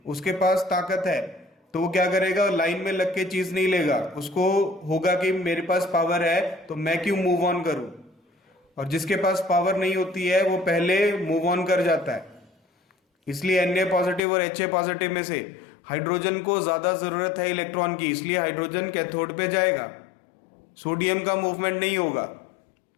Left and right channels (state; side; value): drops out; right; at 14.2 s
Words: उसके पास ताकत है, तो वो क्या करेगा? लाइन में लग के चीज नहीं लेगा, उसको होगा कि मेरे पास पावर है तो मैं क्यों मूव ऑन करूं। और जिसके पास पावर नहीं होती है वो पहले मूव ऑन कर जाता है। इसलिए Na पॉजिटिव और Ha पॉजिटिव में से हाइड्रोजन को ज्यादा जरूरत है इलेक्ट्रॉन की, इसलिए हाइड्रोजन कैथोड पे जाएगा, सोडियम का मूवमेंट नहीं होगा।